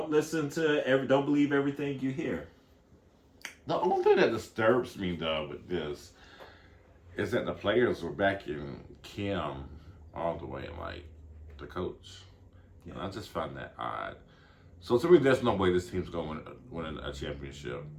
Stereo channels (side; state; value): both; identical; correlation 1.00